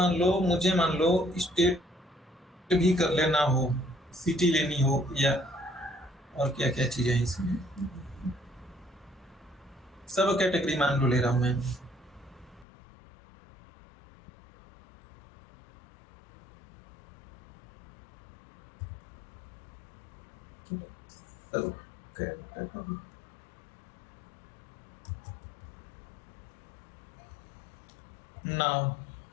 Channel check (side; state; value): right; drops out; at 12.7 s